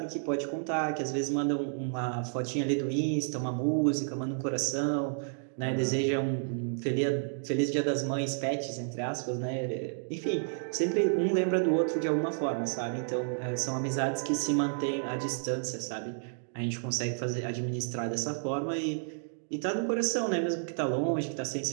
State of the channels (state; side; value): silent; left; digital silence